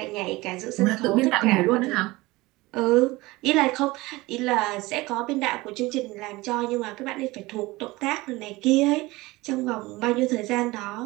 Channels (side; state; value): left; quieter; 20.9 dB